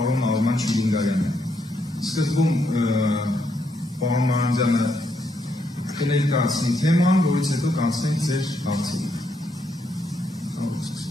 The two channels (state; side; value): normal; both; correlation 0.77